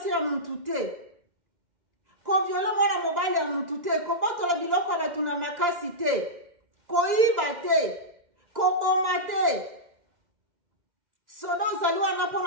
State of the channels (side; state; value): left; late; 2.0 ms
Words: ya mtu te. Ko viole mwana mobali ya mtu te. Ko botola biloko batu na makasi te. Ko iba te. Ko boma te. Sodo zaliwa